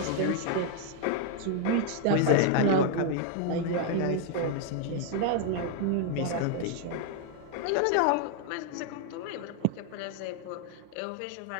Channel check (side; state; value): both; different; correlation 0.00